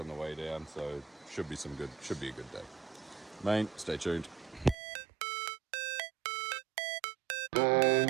the way down. So should be a good day. Mate, stay tuned.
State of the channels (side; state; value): left; drops out; at 4.8 s